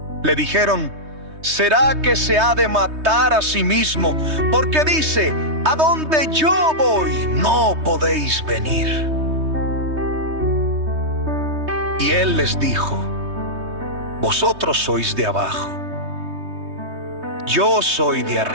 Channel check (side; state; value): left; late; 3.2 ms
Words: Le dijeron: ¿Será que se ha de matar a sí mismo? Porque dice: a donde yo voy, no podéis venir. Y él les dijo: Vosotros sois de abajo, yo soy de